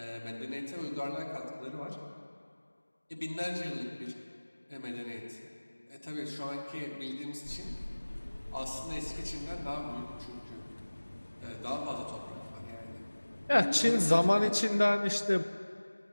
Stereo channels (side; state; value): both; inverted; correlation -1.00